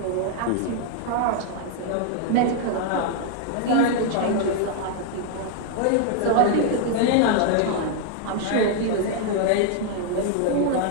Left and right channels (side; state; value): both; different; correlation 0.00